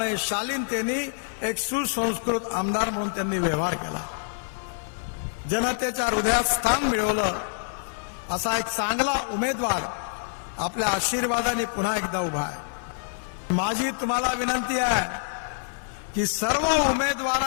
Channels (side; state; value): right; silent; 61 dB below the other